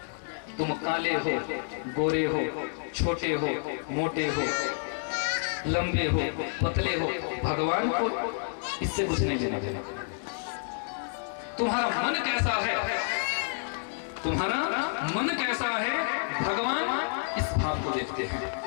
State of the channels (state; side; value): silent; right; 58 dB below the other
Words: तुम काले हो, गोरे हो, छोटे हो, मोटे हो, लंबे हो, पतले हो, भगवान को इससे कुछ नहीं लेना देना। तुम्हारा मन कैसा है, तुम्हारा मन कैसा है, भगवान इस भाव को देखते हैं।